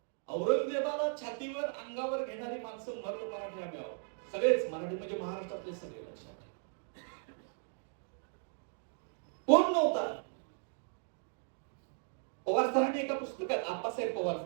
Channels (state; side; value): silent; left; 53 dB below the other